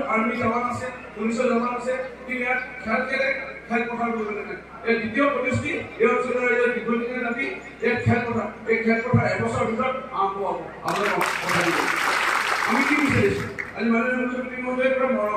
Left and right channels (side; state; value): both; identical; correlation 1.00